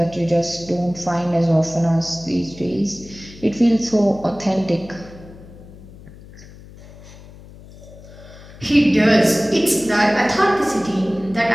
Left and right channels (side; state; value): left; noise; hum, 19 dB below the sound